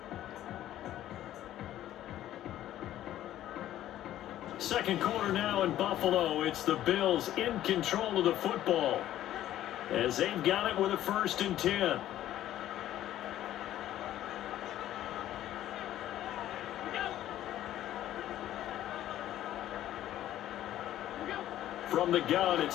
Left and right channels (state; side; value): quieter; right; 12.9 dB